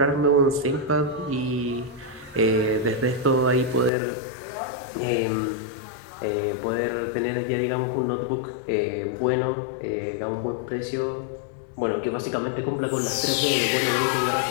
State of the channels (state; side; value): drops out; right; at 3.9 s